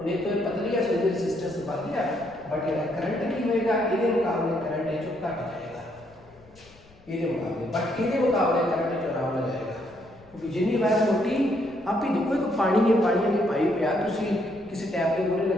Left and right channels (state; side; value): noise; left; rumble, 27 dB below the sound